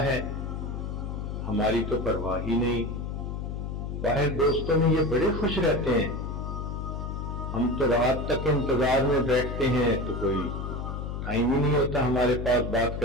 ہے، ہماری تو پرواہ ہی نہیں۔ باہر دوستوں میں یہ بڑے خوش رہتے ہیں، ہم تو رات تک انتظار میں بیٹھتے ہیں تو کوئی ٹائم ہی نہیں ہوتا ہمارے پاس بات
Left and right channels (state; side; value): noise; left; hum, 5 dB below the sound